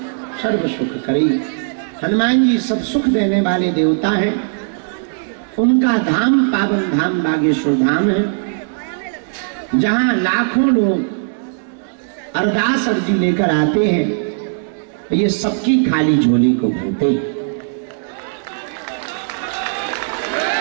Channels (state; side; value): silent; left; digital silence